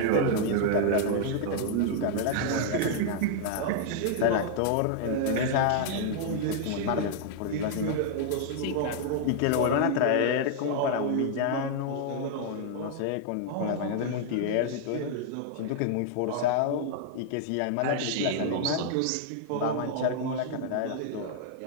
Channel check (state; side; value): different; both; correlation -0.01